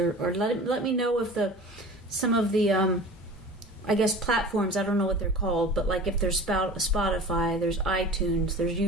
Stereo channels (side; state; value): both; normal; correlation 0.39